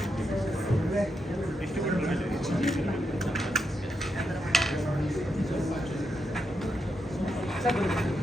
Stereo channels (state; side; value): normal; both; correlation 0.83